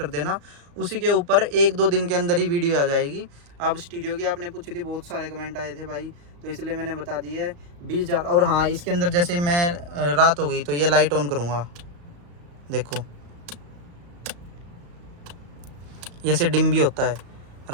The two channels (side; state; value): left; late; 35 ms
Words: देना, उसी के ऊपर 1-2 दिन के अंदर ही वीडियो आ जाएगी। अब स्टीरियो की आपने पूछी थी, बहुत सारे कमेंट आए थे भाई, तो इसलिए मैंने बता दी है 20,000। और हाँ, इसके अंदर जैसे मैं रात हो गई तो ये लाइट ऑन करूँगा, देखो जैसे डिम भी होता है,